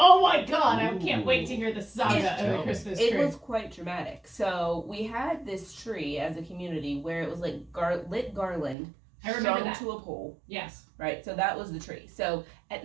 my god! I can't wait to hear the saga It's- of the Christmas tree. It was quite dramatic. So we had this tree as a community where it was like lit garland I remember strung that. to a pole, Yes. right? So that was the tree. So at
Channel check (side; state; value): left; drops out; at 8.8 s